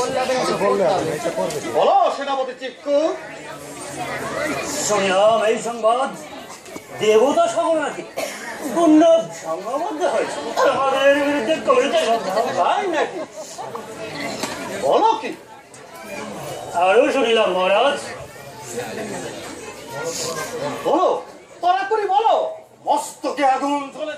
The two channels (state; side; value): identical; both; correlation 1.00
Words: বলো সেনাপতি চিক্কু। শুনলাম এই সংবাদ দেবতা সকল নাকি পূর্ণ সংঘবদ্ধ হয়েছে আমাদের বিরুদ্ধে কবিতা তাই নাকি? বলো কি? আরো শুনিলাম মহারাজ বলো, তাড়াতাড়ি বলো। মস্তকে আগুন